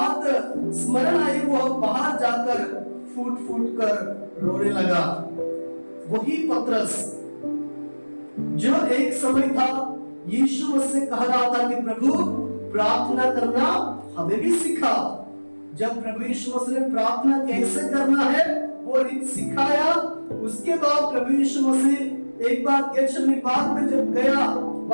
स्मरण आई, वो बाहर जाकर फूट फूट कर रोने लगा। वही पतरस जो एक समय था यीशु मसीह कह रहा था कि प्रभु प्रार्थना करना हमें भी सिखा। जब प्रभु यीशु मसीह ने प्रार्थना कैसे करना है वो रीत सिखाया, उसके बाद प्रभु यीशु मसीह एक बार गेतशमनी बाग में जब गया,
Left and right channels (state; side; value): inverted; both; correlation -1.00